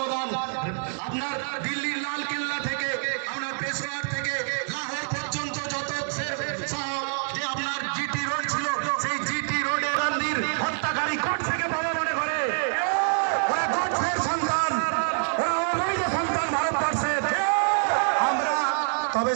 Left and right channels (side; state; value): left; silent; 61 dB below the other